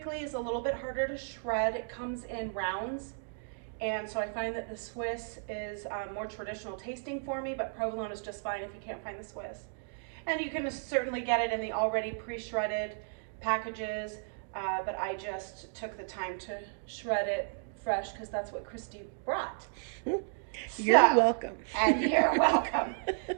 is a little bit harder to shred. It comes in rounds. And so I find that the Swiss is more traditional tasting for me, but provolone is just fine if you can't find the Swiss. And you can certainly get it in the already pre-shredded packages, but I just took the time to shred it fresh because that's what Christy brought. You're welcome. And you're welcome.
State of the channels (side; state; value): left; silent; digital silence